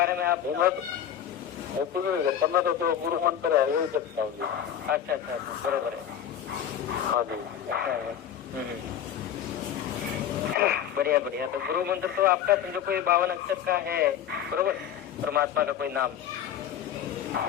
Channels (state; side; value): quieter; right; 9.6 dB